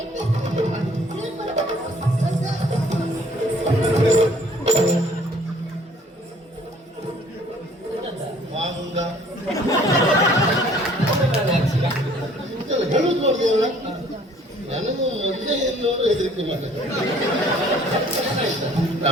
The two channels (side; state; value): both; normal; correlation 0.56